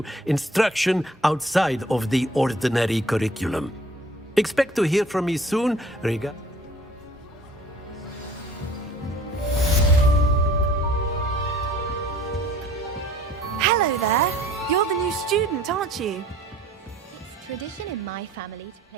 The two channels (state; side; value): normal; both; correlation 0.52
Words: instruction outside of the ordinary curriculum. Expect to hear from me soon. Hello there. You're the new student, aren't you? It's tradition in my family to